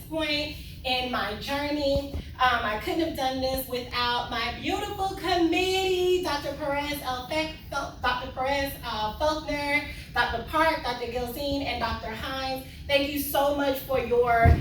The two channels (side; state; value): both; identical; correlation 1.00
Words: point in my journey. I couldn't have done this without my beautiful committee, Dr. Dr. Perez Faulkner, Dr. Park, Dr. Gilzine, and Dr. Hines. Thank you so much for your